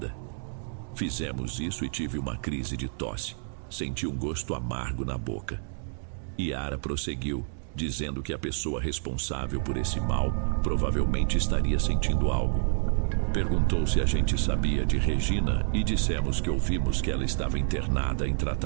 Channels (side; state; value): left; silent; digital silence